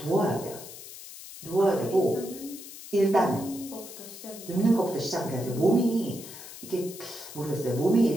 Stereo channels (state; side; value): noise; left; hiss, 14 dB below the sound